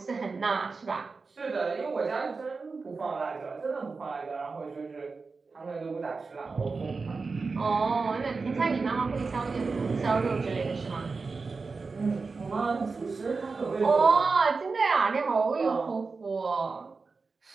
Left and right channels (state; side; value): quieter; left; 4.3 dB